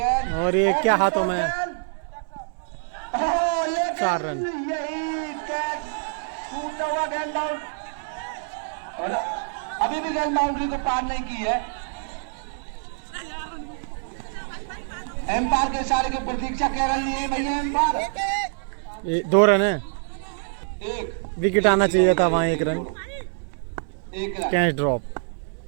और ये क्या हाथों में? 4 रन। यही कैच टूटा हुआ गेंद आउट, और अभी भी गेंद बाउंड्री को पार नहीं की है। एम्पायर के इशारे की प्रतीक्षा कर रही है भैया एम्पायर। 2 रन है, एक विकेट आना चाहिए था वहाँ। 1 run, 1 run. Catch drop.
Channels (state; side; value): silent; left; digital silence